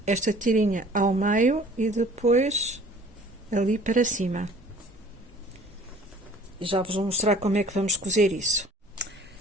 esta tirinha ao meio e depois ali para cima. E já vos vou mostrar como é que vamos cozer isso.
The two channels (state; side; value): normal; both; correlation 0.50